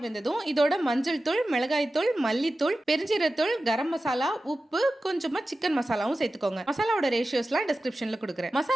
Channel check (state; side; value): normal; both; correlation 0.94